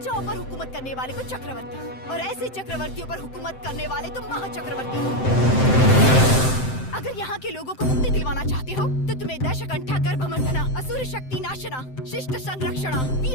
पर हुकूमत करने वाले को चक्रवर्ती, और ऐसे चक्रवर्तियों पर हुकूमत करने वाले तुम महाचक्रवर्ती हो। अगर यहाँ के लोगों को मुक्ति दिलवाना चाहते हो तो तुम्हें दशकंठा गर्भमर्दना, असुर शक्ति नाशना, शिष्ट संरक्षणा,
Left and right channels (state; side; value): late; right; 7.8 ms